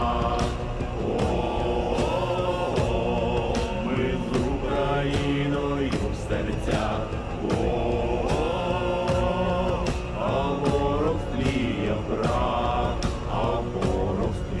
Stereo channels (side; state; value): both; identical; correlation 1.00